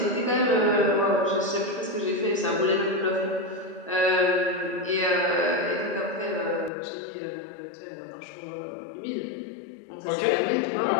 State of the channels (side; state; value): right; drops out; at 6.7 s